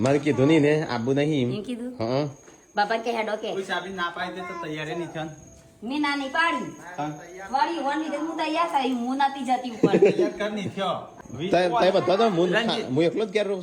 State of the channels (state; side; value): identical; both; correlation 1.00